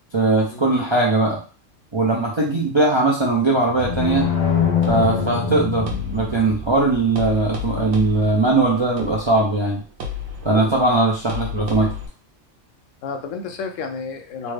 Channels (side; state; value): both; normal; correlation 0.10